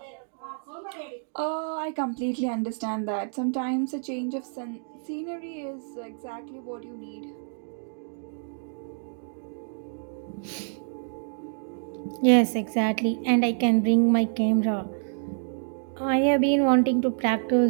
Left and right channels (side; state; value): left; silent; digital silence